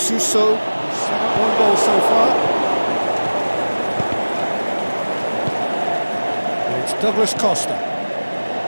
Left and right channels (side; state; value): both; inverted; correlation -1.00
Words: One goal so far. And it's Douglas Costa.